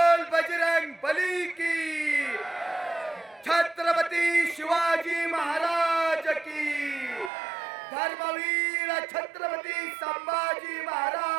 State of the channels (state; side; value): drops out; left; at 7.3 s